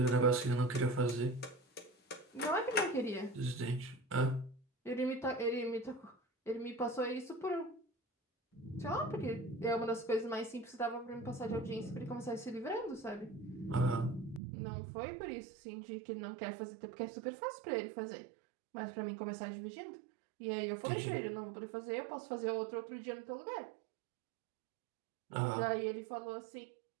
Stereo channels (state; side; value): drops out; left; at 14.4 s